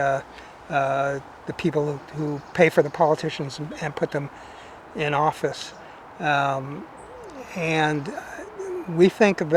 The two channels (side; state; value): both; identical; correlation 1.00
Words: people who pay for the politicians and put them in office. Um, and we think